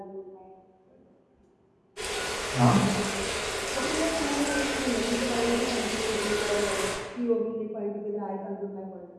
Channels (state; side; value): identical; both; correlation 1.00